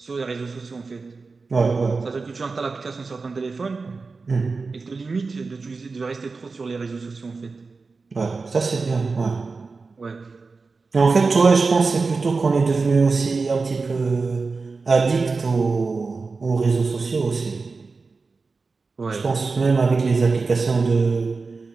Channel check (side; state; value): left; quieter; 4.2 dB